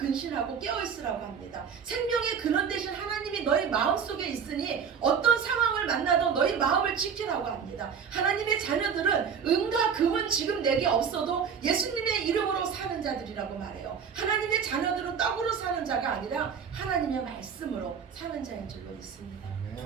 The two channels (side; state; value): left; quieter; 6.8 dB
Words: 깨어있으라고 합니다. 생명의 근원 되신 하나님이 너희 마음속에 있으니 어떤 상황을 만나도 너희 마음을 지키라고 합니다. 하나님의 자녀들은 은과 금은 지금 내게 없어도 예수님의 이름으로 사는 자들이라고 말해요. 하나님의 자녀들은 떡으로 사는 자가 아니라 하나님의 말씀으로 사는 자인 줄로 믿습니다.